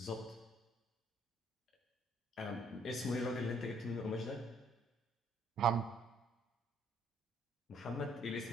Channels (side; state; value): both; normal; correlation 0.64